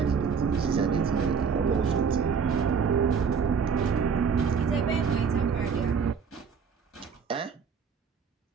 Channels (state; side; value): quieter; left; 6.1 dB